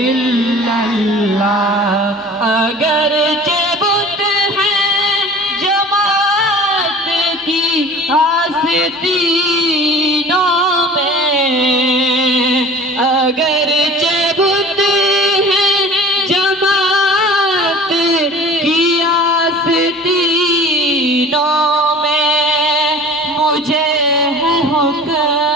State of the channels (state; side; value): normal; both; correlation 0.43